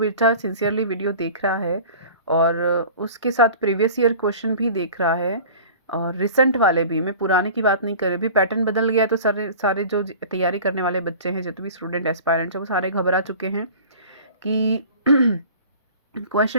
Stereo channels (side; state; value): both; inverted; correlation -0.42